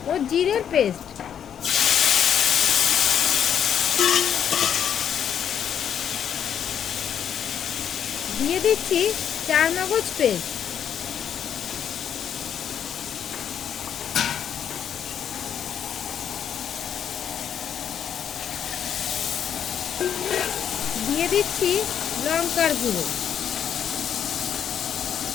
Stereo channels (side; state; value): right; quieter; 8.8 dB